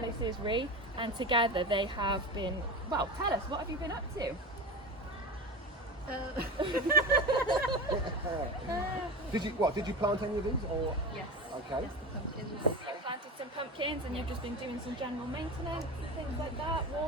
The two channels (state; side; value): normal; both; correlation 0.26